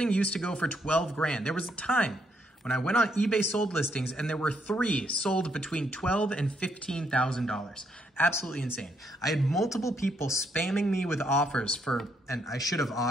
used to go for 12 grand. There was a time when I went on eBay sold listings and there were 3 sold between $12,000 and $15,000. Absolutely insane. I had multiple people spamming me with offers for, and I should have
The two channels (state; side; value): normal; both; correlation 0.74